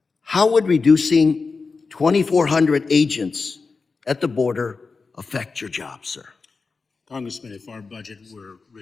How would reducing 2,400 agents at the border affect your job, sir? Congressman, if our budget were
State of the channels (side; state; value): right; quieter; 4.4 dB